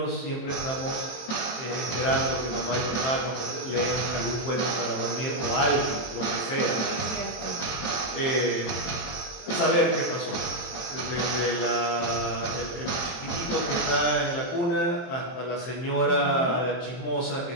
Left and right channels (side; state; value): right; late; 23 ms